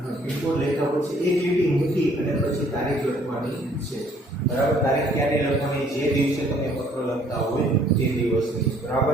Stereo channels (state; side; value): normal; both; correlation 0.61